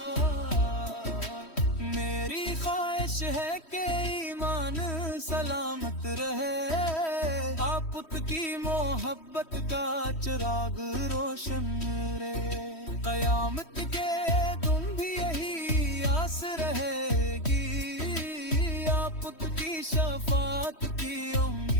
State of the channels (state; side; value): late; right; 3.1 ms